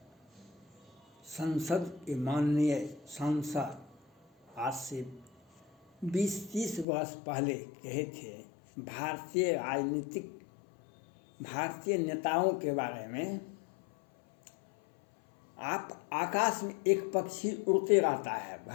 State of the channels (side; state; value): right; drops out; at 6.9 s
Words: संसद के माननीय सांसद आज से 20-30 वर्ष पहले कहे थे भारतीय नेताओं के बारे में। आप आकाश में एक पक्षी उड़ते रहता है